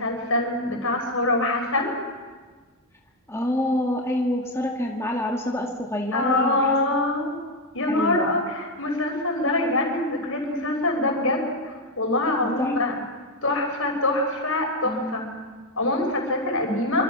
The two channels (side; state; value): both; normal; correlation 0.06